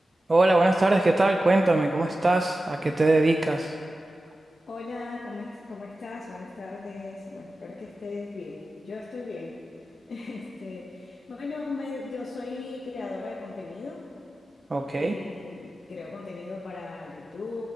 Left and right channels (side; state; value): both; normal; correlation 0.94